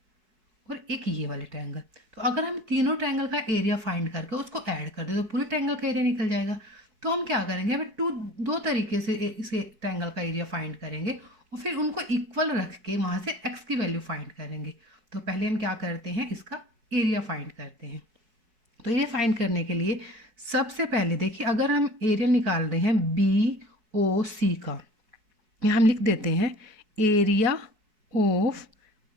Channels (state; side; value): late; left; 4.6 ms